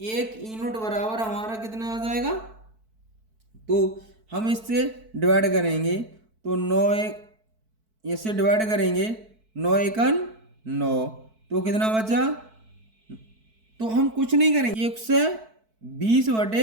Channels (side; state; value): left; late; 4.6 ms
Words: एक यूनिट बराबर हमारा कितना आ जाएगा, तो हम इससे डिवाइड करेंगे तो 9 एक, इससे डिवाइड करेंगे 9 एकन 9, तो कितना बचा, तो हम कुछ नहीं करेंगे